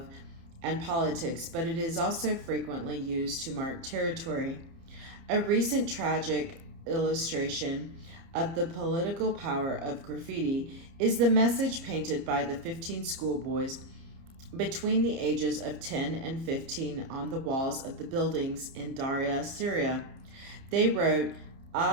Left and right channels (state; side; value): late; left; 30 ms